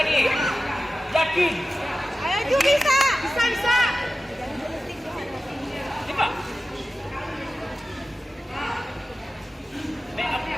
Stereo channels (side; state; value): both; normal; correlation 0.94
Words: Yakin. Ayo Ju, bisa. Bisa. Coba.